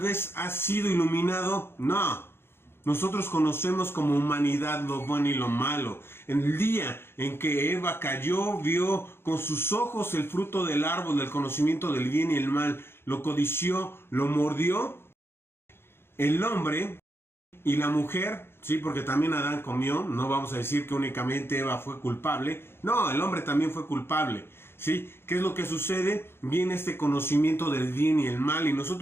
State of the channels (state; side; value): late; right; 0.11 ms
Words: has sido iluminado. No, nosotros conocemos como humanidad lo bueno y lo malo. En el día en que Eva cayó, vio con sus ojos el fruto del árbol del conocimiento del bien y el mal, lo codició, lo mordió. El hombre y la mujer, sí, porque también Adán comió, no vamos a decir que únicamente Eva fue culpable, no, el hombre también fue culpable, ¿sí? ¿Qué es lo que sucede? Viene este conocimiento del bien y el mal, y